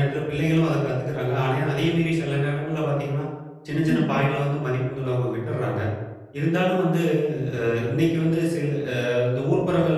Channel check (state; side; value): identical; both; correlation 1.00